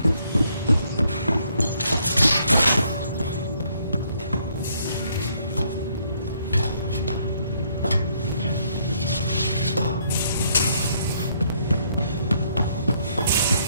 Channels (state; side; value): inverted; both; correlation -0.69